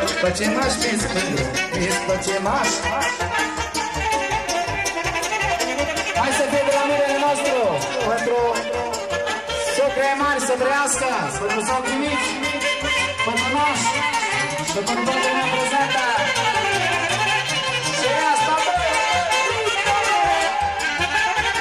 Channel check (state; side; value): identical; both; correlation 1.00